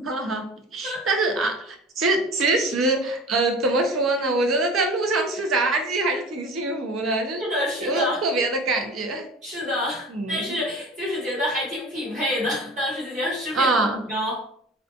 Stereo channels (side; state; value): both; normal; correlation 0.38